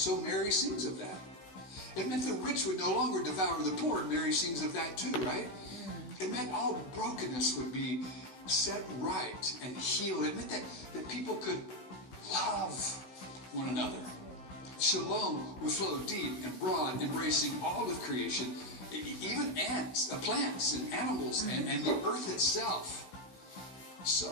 Mary sings of that. It meant the rich would no longer devour the poor. Mary sings of that too, right? It meant all brokenness would be set right and healed. It meant that people could love one another. Shalom would flow deep and broad, embracing all of creation, even ants, plants and animals, and the earth itself.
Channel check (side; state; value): right; late; 16 ms